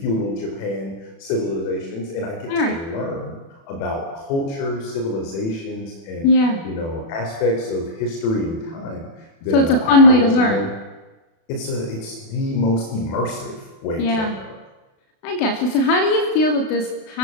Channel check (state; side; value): late; right; 36 ms